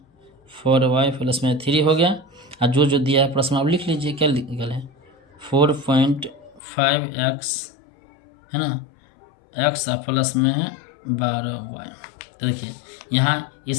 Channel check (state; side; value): drops out; right; at 6.6 s